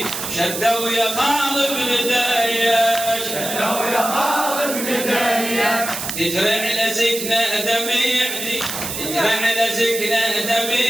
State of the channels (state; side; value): noise; right; hiss, 5 dB below the sound